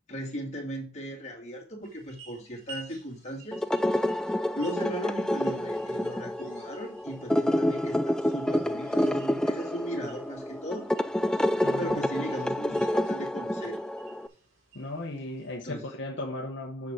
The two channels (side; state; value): both; normal; correlation 0.87